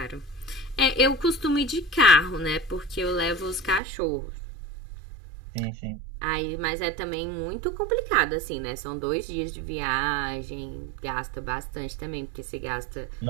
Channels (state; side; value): drops out; left; at 3.8 s